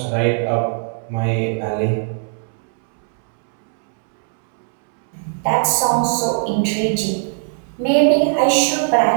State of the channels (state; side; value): silent; left; 67 dB below the other